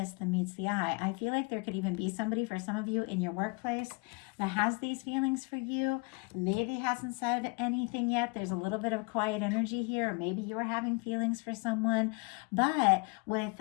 than meets the eye. I feel like there could even be somebody, for some of you in your workplace, that has these feelings for you, maybe hasn't said anything yet. There's a little bit of quiet energy here, or maybe you're having feelings for someone. But with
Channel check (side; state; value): right; quieter; 29.5 dB